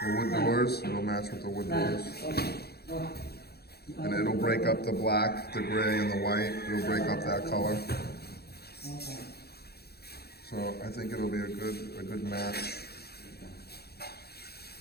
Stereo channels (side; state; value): right; late; 0.46 ms